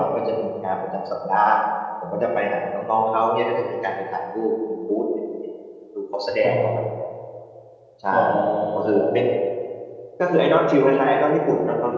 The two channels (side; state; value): both; identical; correlation 1.00